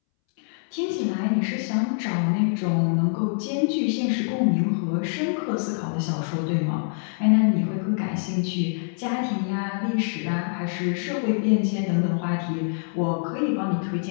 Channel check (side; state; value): right; silent; 62 dB below the other